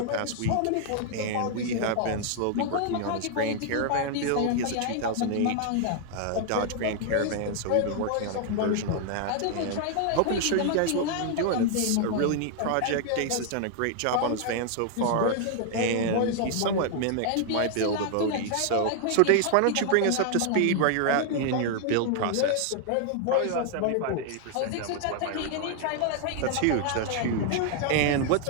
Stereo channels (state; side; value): different; both; correlation 0.00